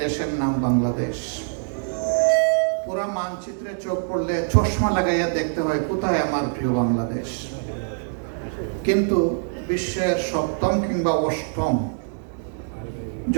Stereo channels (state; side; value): silent; left; digital silence